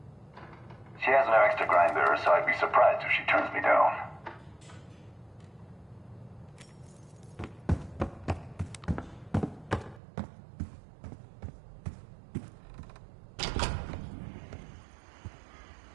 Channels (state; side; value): drops out; left; at 10.0 s